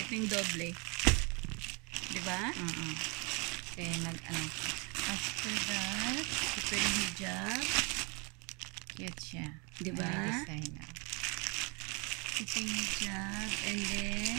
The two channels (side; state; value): left; quieter; 31.5 dB